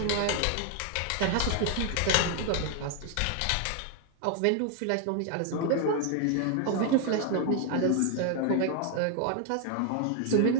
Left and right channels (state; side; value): different; both; correlation 0.00